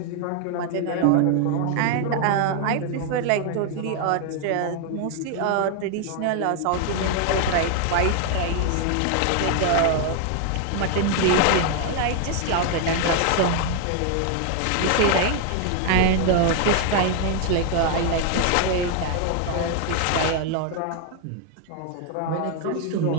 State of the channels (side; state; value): both; different; correlation 0.00